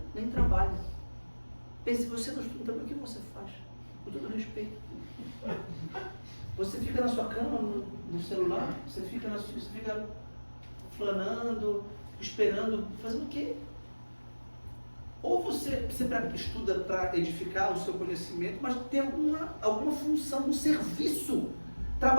nem trabalha. Pense, se você não estuda também, o que você faz? Com todo respeito. Você fica na sua cama, no celular, você fica flanando, esperando, fazendo o quê? Ou você estuda para edificar o seu conhecimento, mas tem alguma função, um serviço.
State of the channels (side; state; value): both; inverted; correlation -1.00